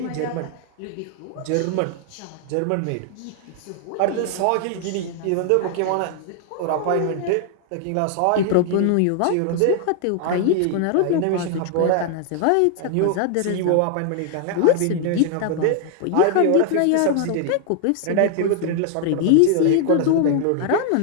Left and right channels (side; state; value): both; different; correlation 0.00